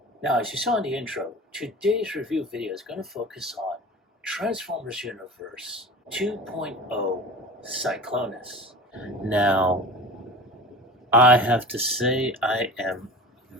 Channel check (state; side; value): normal; both; correlation 0.34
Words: Now, as you saw in the intro, today's review video is going to focus on Transformers Universe 2.0 Cyclonus. Now, I have to say I am